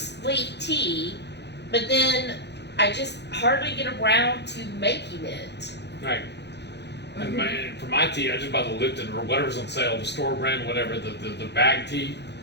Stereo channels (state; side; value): late; right; 0.50 ms